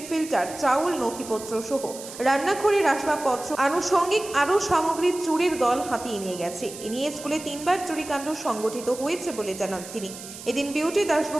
ফিল্টার, চাউল, নথিপত্র সহ রান্নাঘরের আসবাবপত্র আনুষঙ্গিক আরও সামগ্রী চুরির দল হাতিয়ে নিয়ে গেছে। এ নিয়ে স্কুলে 3বার চুরিকাণ্ড সংগঠিত হয়েছে বলে জানান তিনি। এদিন বিউটি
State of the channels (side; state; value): right; noise; hiss, 13 dB below the sound